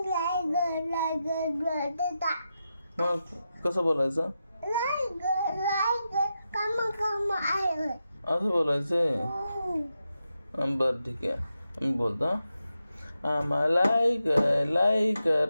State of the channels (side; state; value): both; inverted; correlation -0.88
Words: मग कसं बोलायचं? असं बोलायचंय. बरं ठीक आहे, मी बोलतो. आम्हा लाईक